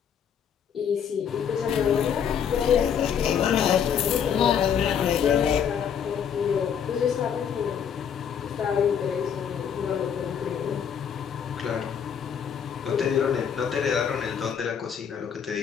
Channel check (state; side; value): quieter; right; 7.9 dB